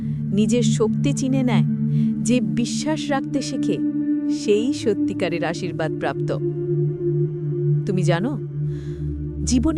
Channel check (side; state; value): both; identical; correlation 1.00